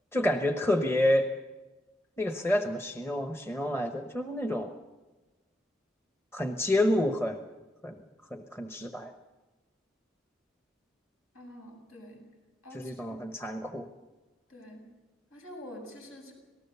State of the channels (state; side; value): normal; both; correlation 0.84